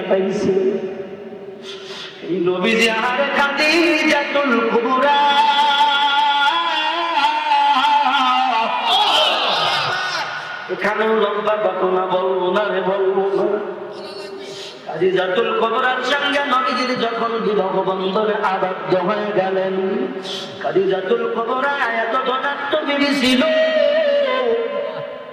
এই নবী যে আহারে খাদিজাতুল কুবরা এখানেও লম্বা ঘটনা বলবো না রে বলবো না খাদিজাতুল কুবরার সঙ্গে নবীজি যখন বিবাহ বন্ধনে আবদ্ধ হয়ে গেলেন খাদিজাতুল কুবরা এত ধনাত্ম বিবি ছিল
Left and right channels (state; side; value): identical; both; correlation 1.00